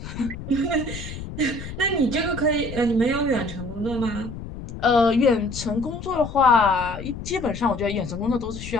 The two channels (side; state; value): left; noise; rumble, 10 dB below the sound